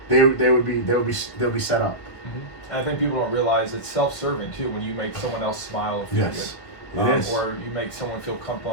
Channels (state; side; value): late; right; 1.7 ms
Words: they'll be set up. Mm-hmm. And I think people don't realize it's self-serving too when you make someone else smile or feel good. Or you make someone feel